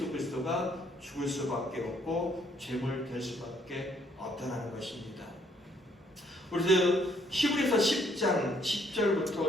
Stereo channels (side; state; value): both; normal; correlation 0.68